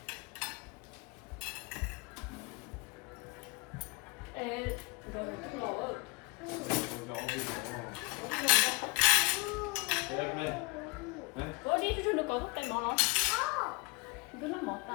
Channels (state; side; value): quieter; right; 26.7 dB